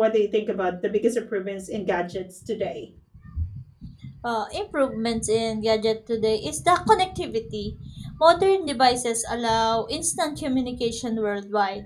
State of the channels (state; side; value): identical; both; correlation 1.00